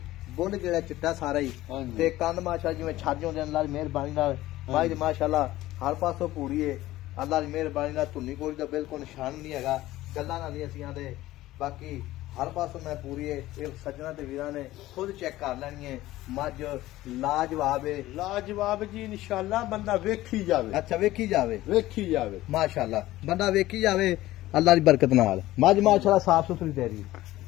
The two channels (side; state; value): right; quieter; 16.2 dB